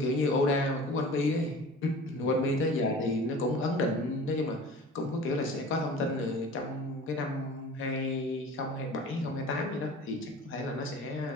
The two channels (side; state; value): both; normal; correlation 0.41